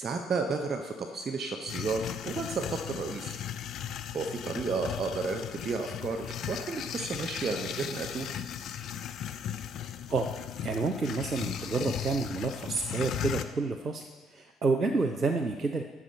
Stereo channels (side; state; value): both; normal; correlation 0.68